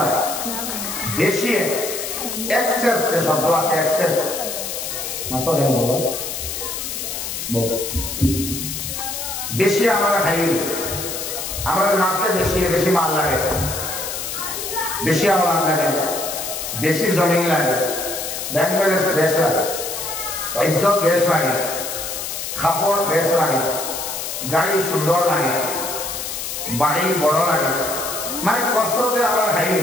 বেশি এক্সেস যে শব্দ আছে, এক্সেস মাত্র গেল বেশি আমরা খাই, আমরা নার্সে বেশি বেশি মাল লাগে, বেশি আওয়াজ লাগে, বেশি জমিন লাগে, ব্যাংক ব্যালেন্স বেশ লাগে, ইজ্জত বেশ লাগে, কাপড় বেশ লাগে, গাড়ি সুন্দর লাগে, বাড়ি বড় লাগে। মানে কসরতে আমরা খাই,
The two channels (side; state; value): left; noise; hiss, 5 dB below the sound